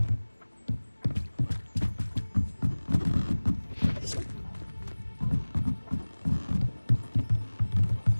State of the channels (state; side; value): inverted; both; correlation -1.00